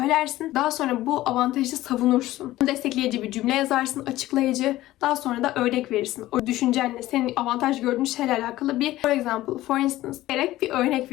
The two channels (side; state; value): right; quieter; 16.0 dB